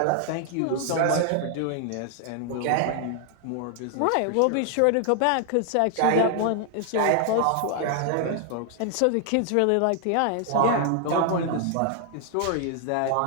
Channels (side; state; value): both; different; correlation 0.00